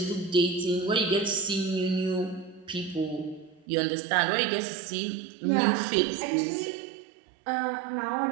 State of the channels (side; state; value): left; drops out; at 3.7 s